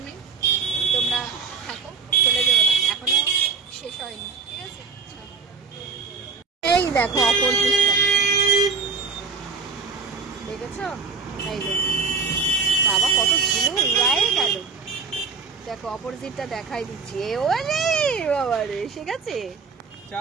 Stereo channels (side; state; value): left; quieter; 4.9 dB